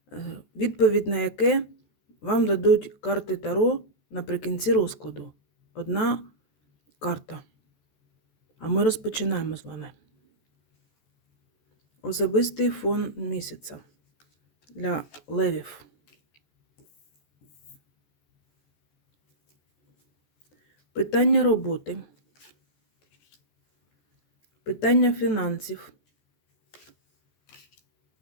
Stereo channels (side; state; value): right; late; 14 ms